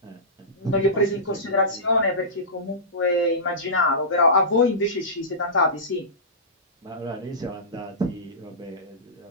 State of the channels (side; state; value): both; normal; correlation -0.19